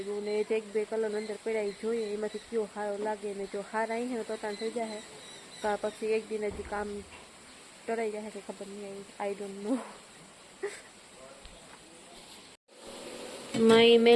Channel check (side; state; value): both; identical; correlation 1.00